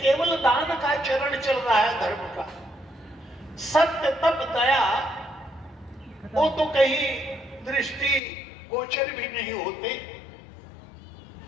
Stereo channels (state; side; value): drops out; right; at 8.2 s